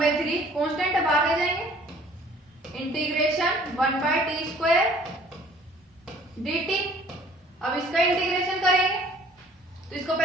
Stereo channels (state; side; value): normal; both; correlation 0.54